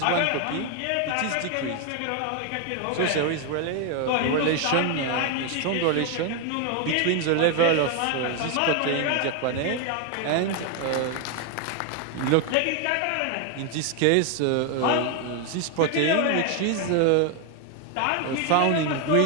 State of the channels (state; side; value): different; both; correlation 0.01